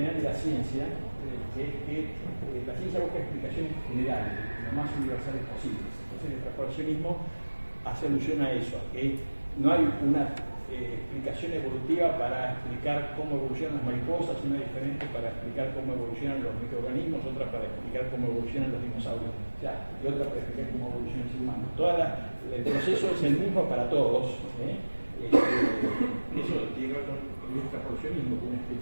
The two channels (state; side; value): inverted; both; correlation -1.00